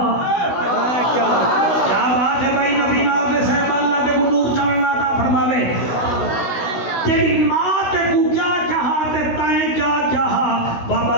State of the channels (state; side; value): late; right; 16 ms